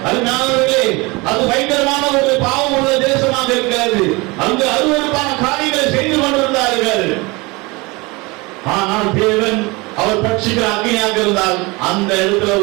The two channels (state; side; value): quieter; left; 24.9 dB